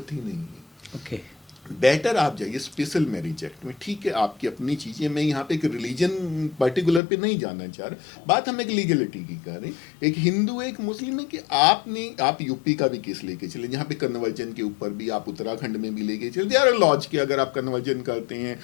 ही नहीं है। ओके। बेटर आप जाइए स्पेशल मैरिज एक्ट में। ठीक है, आपकी अपनी चीज़ें, मैं यहाँ पे एक रिलीजन पर्टिकुलर पे नहीं जाना चाह रहा, बात हम एक लीगलिटी की कर रहे हैं। एक हिंदू है, एक मुस्लिम है, कि आप यूपी का भी केस लेके चले जहाँ पे कन्वर्जन के ऊपर भी, आप उत्तराखंड में भी लेके चले, दे आर लॉज के अगर आप कन्वर्जन करते हैं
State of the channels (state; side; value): drops out; right; at 7.0 s